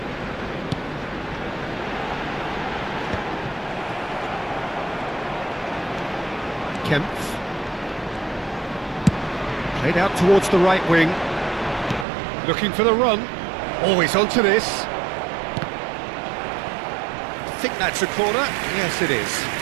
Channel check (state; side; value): drops out; left; at 12.1 s